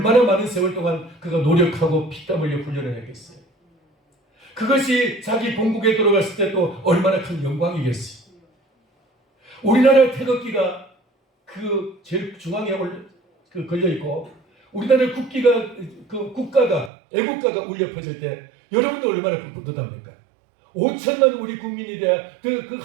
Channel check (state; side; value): drops out; left; at 16.9 s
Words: 많은 세월 동안 그가 노력하고 피땀 흘려 훈련을 했겠어요. 그것이 자기 본국에 들어갔을 때 또 얼마나 큰 영광이겠어요. 우리나라 태극기가 그 제일 중앙에 걸려 있고 우리나라 국기가 그 국가가 애국가가 울려 퍼질 때 여러분도 얼마나 뿌듯합니까? 5천만 우리 국민이 돼야 그